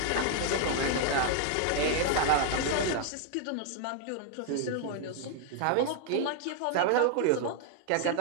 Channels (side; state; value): both; different; correlation 0.00